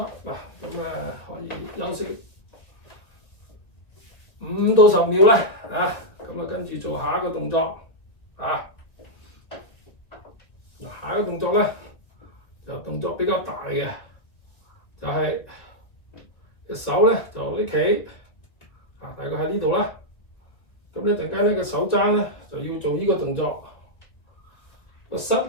嗱，咁可以休息5到10秒啦，咁跟住做下一個動作，下一個動作咧就動作比較大嘅，就係隻手咧就拎起，大概喺呢度啦。咁一陣間呢個手踭咧就要做呢個動作，個膝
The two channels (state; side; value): late; right; 1.7 ms